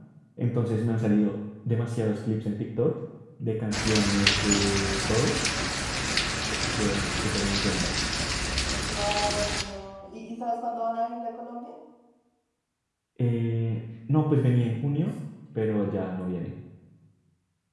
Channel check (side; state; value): both; identical; correlation 1.00